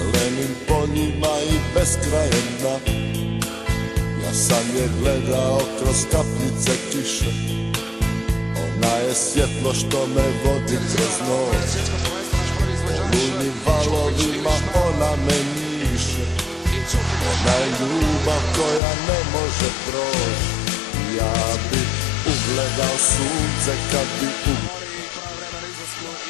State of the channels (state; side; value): drops out; right; at 18.8 s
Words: poljima i beskrajem dna. Ja sam je gledao kroz kapljice kiše, ona je svjetlo što me vodi kroz noć. Olujnim valovima ona me njiše, ona je ljubav koja ne može proći. Ja bi ugledao sunce kad bi